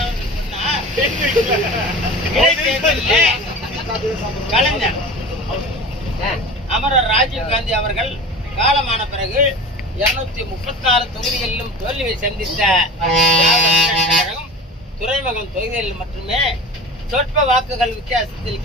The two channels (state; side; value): normal; both; correlation 0.33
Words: அவர்கள் சொன்னார், இடைத்தேர்தலில் கலைஞர் அமரர் ராஜீவ் காந்தி அவர்கள் காலமான பிறகு 236 தொகுதிகளிலும் தோல்வியை சந்தித்த துறைமுகம் தொகுதிகளில் மட்டுமே சொற்ப வாக்குகள் வித்தியாசத்தில்